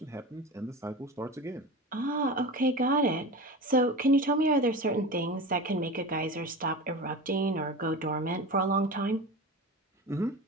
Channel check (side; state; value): both; normal; correlation 0.29